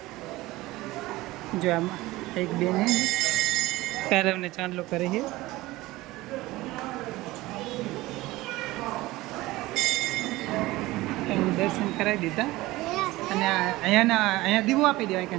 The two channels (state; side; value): quieter; left; 18.9 dB